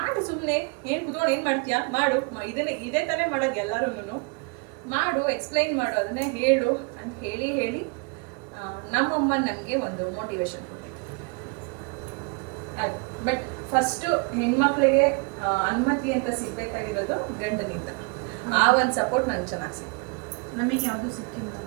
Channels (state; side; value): quieter; left; 32.9 dB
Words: ಸುಮ್ಮನೆ ಏನು ಕುತ್ಕೊಂಡು ಏನು ಮಾಡ್ತೀಯಾ, ಮಾಡು, ಇದೇ ತಾನೇ ಮಾಡೋದು ಎಲ್ಲರೂ, ಮಾಡು, ಎಕ್ಸ್ಪ್ಲೈನ್ ಮಾಡು, ಅದನ್ನೇ ಹೇಳು ಅಂತ ಹೇಳಿ ನಮ್ಮಮ್ಮ ನನಗೆ ಒಂದು ಮೋಟಿವೇಶನ್ ಕೊಟ್ಟಿದ್ದು. ಅದು ಬಟ್ ಫಸ್ಟು ಹೆಣ್ಮಕ್ಳಿಗೆ ಅನುಮತಿ ಅಂತ ಸಿಗ್ಬೇಕಾಗಿರೋದು ಗಂಡನಿಂದ. ಆ ಒಂದು ಸಪೋರ್ಟ್ ನಂಗೆ ಚೆನ್ನಾಗಿ ಸಿಕ್ತು. ನಮಗೆ ಯಾವುದು ಸಿಕ್ಕಿಲ್ಲ,